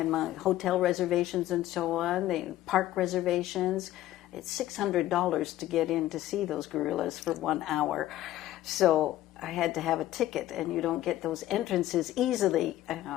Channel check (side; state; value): right; quieter; 14.4 dB